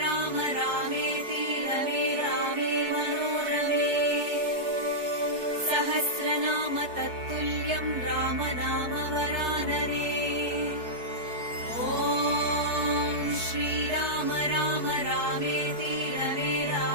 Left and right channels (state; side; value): late; left; 4.6 ms